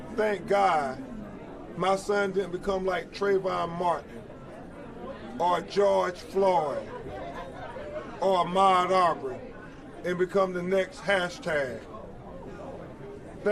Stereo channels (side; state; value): both; identical; correlation 1.00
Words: "Thank God my son didn't become like Trayvon Martin or George Floyd or Ahmaud Arbery and become the next hashtag.